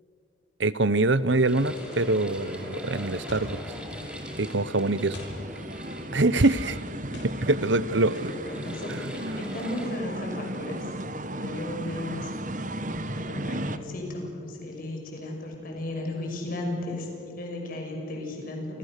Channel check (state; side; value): normal; both; correlation 0.30